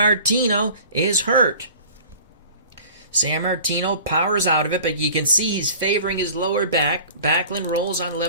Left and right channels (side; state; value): both; inverted; correlation -0.45